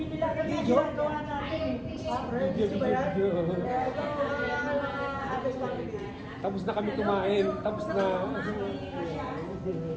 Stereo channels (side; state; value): both; identical; correlation 1.00